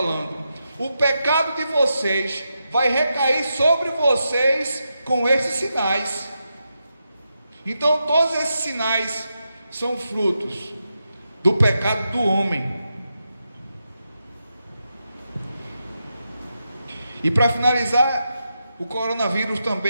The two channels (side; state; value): both; inverted; correlation -0.86